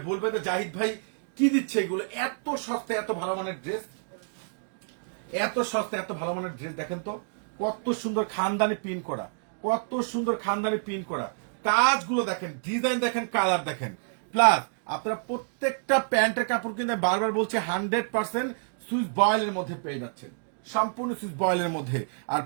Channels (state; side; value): silent; left; digital silence